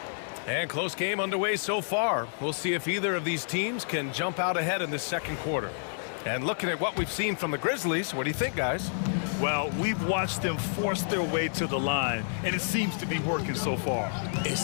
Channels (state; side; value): silent; right; digital silence